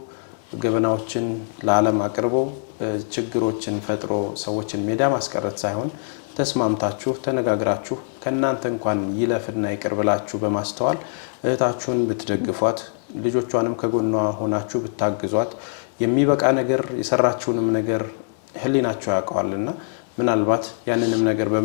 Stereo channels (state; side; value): silent; right; digital silence